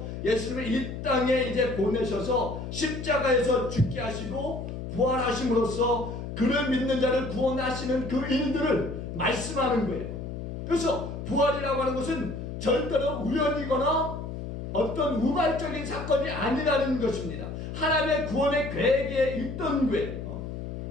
예수를 이 땅에 이제 보내셔서 십자가에서 죽게 하시고 부활하심으로써 그를 믿는 자를 구원하시는 그 일들을 말씀하는 거예요. 그래서 부활이라고 하는 것은 절대로 우연이거나 어떤 우발적인 사건이 아니라는 것입니다. 하나님의 구원의 계획에 있던 거예요.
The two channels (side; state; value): left; noise; hum, 7 dB below the sound